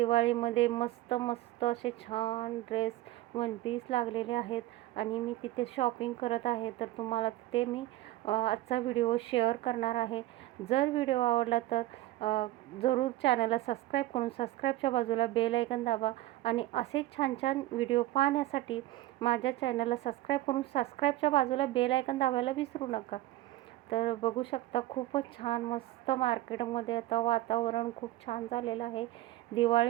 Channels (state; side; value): quieter; left; 16.3 dB